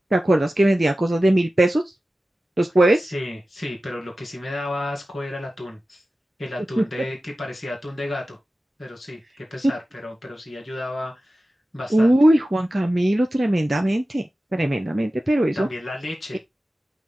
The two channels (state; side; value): normal; both; correlation 0.95